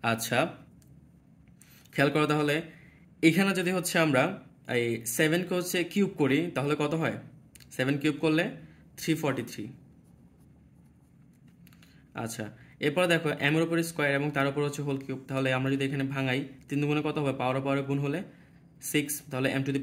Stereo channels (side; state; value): both; identical; correlation 1.00